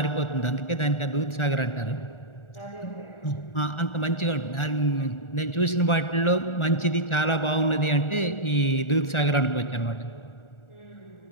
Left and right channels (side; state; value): right; late; 1.4 ms